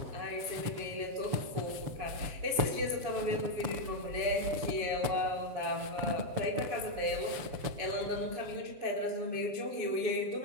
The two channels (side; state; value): left; late; 7.1 ms